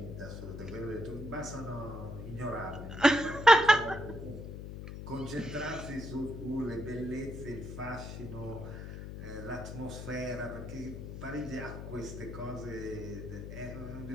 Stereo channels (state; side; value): noise; left; hum, 9 dB below the sound